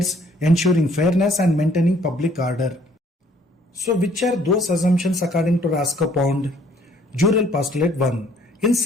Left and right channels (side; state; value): both; normal; correlation 0.61